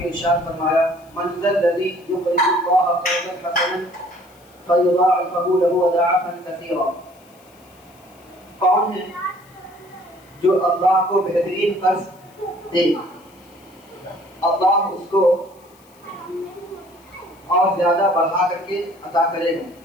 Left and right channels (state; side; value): noise; left; hiss, 29 dB below the sound